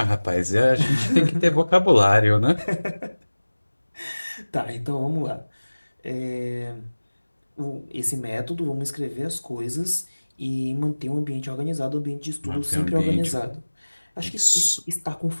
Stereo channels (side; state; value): both; inverted; correlation -1.00